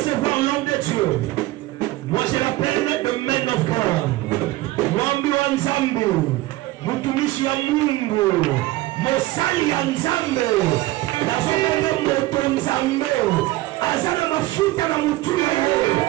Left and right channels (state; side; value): quieter; left; 18.0 dB